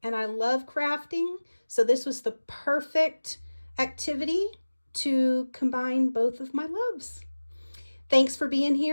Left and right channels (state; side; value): inverted; both; correlation -1.00